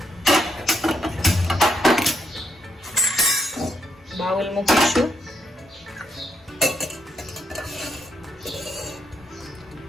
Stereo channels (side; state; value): both; normal; correlation 0.77